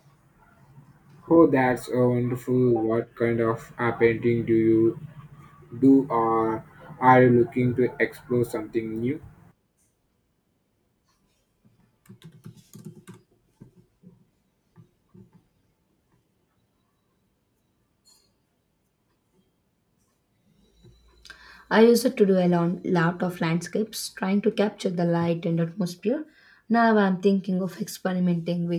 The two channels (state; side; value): identical; both; correlation 1.00